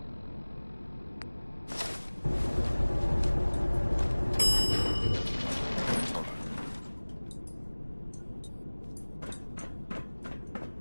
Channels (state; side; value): inverted; both; correlation -1.00